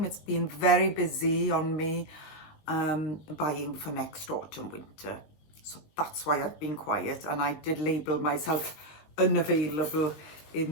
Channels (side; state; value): right; late; 20 ms